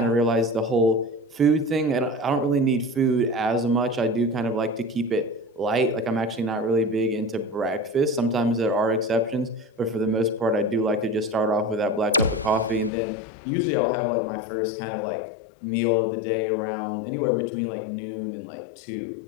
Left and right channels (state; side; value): drops out; right; at 12.9 s